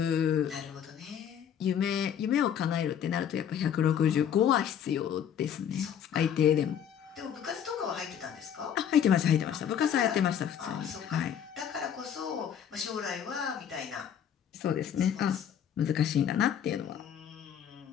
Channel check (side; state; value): right; quieter; 8.9 dB